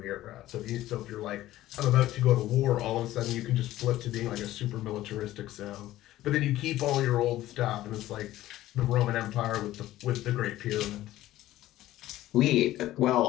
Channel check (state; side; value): quieter; right; 15.0 dB